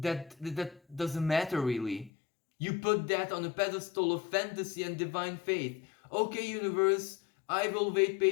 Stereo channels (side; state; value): right; drops out; at 2.1 s